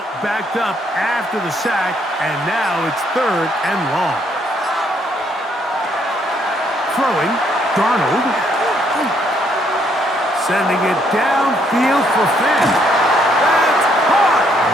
backed up after the sack, and now it's 3rd and long. Throwing, Darnold. Sending it downfield for Finn. That's caught!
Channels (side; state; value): both; normal; correlation 0.70